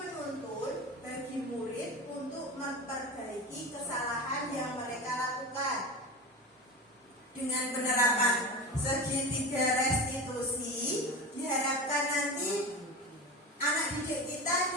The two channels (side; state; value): both; normal; correlation 0.27